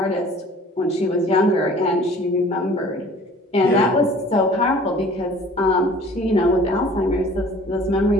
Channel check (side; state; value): both; normal; correlation 0.49